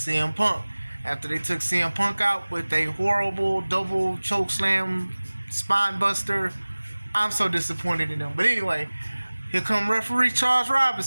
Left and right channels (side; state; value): both; inverted; correlation -1.00